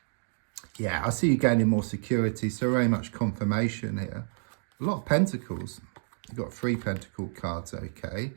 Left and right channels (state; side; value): silent; left; 58 dB below the other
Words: Yeah, I see you gaining more security, so very much confirmation here. A lot of pentacles. You've got 3 pentacle cards, okay?